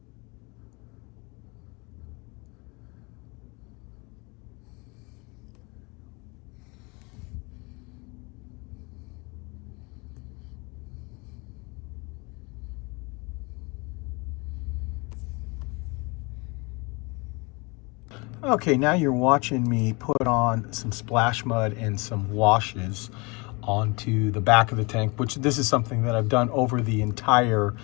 Okay, now you're watching me put on some splash mud and some washes onto the back of the tank, which this is something that I've done over the entire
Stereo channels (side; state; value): right; quieter; 28.0 dB